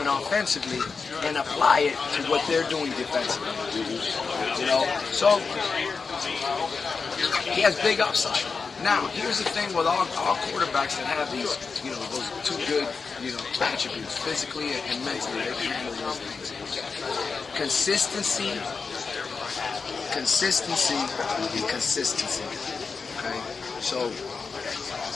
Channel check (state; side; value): quieter; right; 4.9 dB